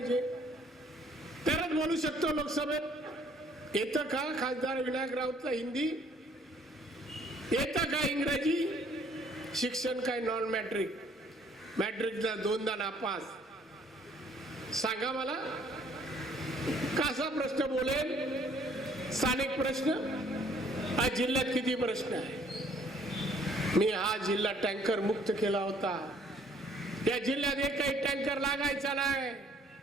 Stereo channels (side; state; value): both; normal; correlation 0.61